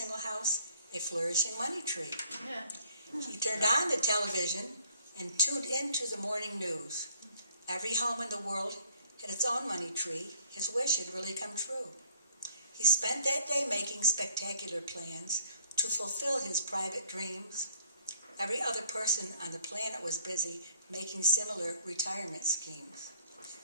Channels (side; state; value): both; inverted; correlation -0.60